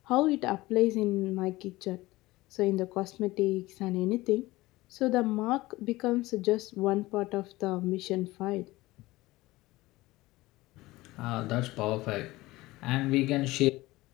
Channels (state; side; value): quieter; right; 19.3 dB